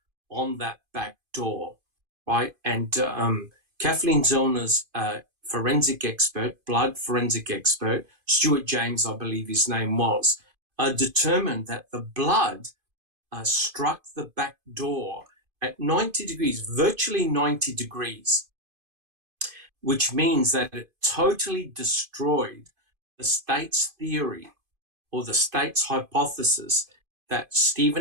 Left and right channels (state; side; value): late; left; 2.5 ms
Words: on that back door, right? And Kathleen Zellner's forensic expert, blood forensic expert, Stuart James, I believe his name was, determined that the blood struck the back door at 90 degrees, virtually 90 degrees, which means that it totally destroyed the state's theory or the state's hypothesis that